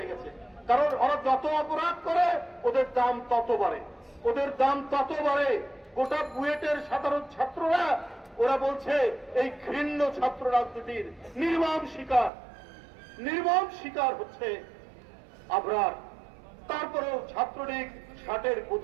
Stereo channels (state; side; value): drops out; left; at 12.3 s